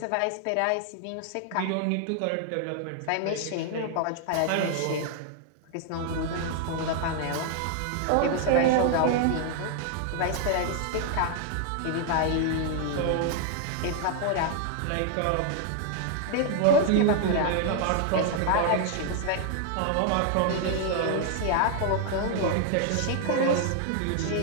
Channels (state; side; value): different; both; correlation 0.00